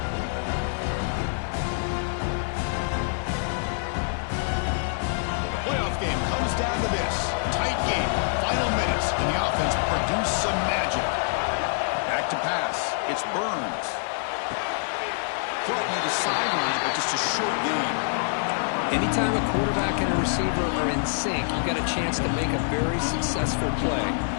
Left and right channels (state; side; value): silent; right; digital silence